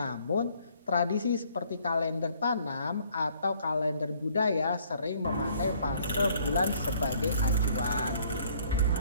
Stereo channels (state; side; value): inverted; both; correlation -0.62